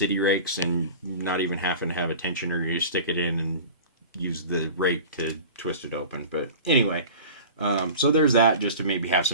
rakes and not even having to have a tensioner. You stick it in and use the rake to twist it open. But anyway, so there's that, just to maybe have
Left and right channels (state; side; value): inverted; both; correlation -0.38